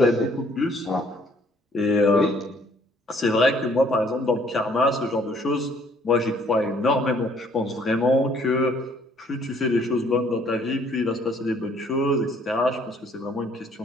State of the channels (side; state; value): both; normal; correlation 0.62